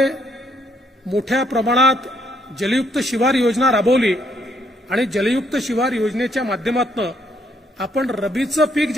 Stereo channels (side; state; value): both; normal; correlation 0.71